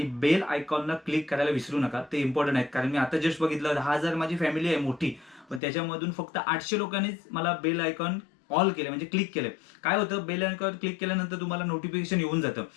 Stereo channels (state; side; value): drops out; right; at 5.6 s